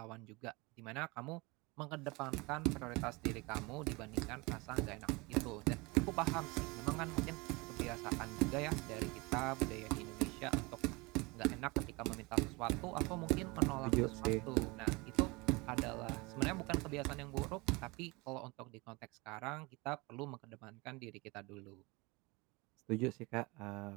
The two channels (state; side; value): quieter; left; 25.4 dB